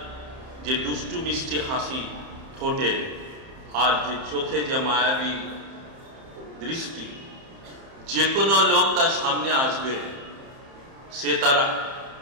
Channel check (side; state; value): left; late; 30 ms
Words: যে দুষ্টু মিষ্টি হাসি ঠোঁটে আর যে চোখে যে মায়াবী দৃষ্টি, যে কোনো লোক তার সামনে আসবে সে তার